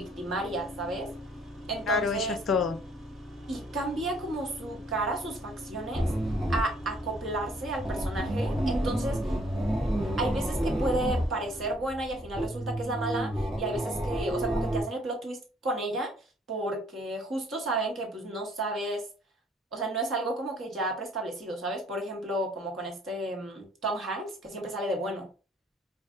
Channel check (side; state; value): both; normal; correlation 0.62